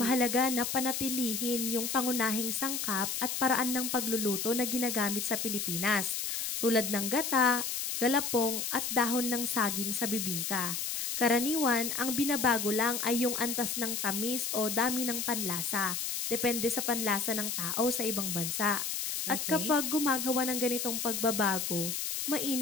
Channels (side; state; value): left; noise; hiss, 2 dB below the sound